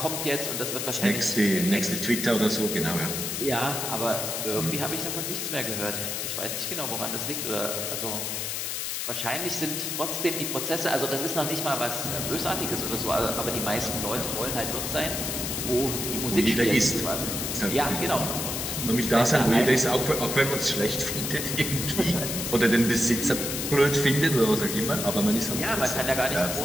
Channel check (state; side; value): noise; left; hiss, 3 dB below the sound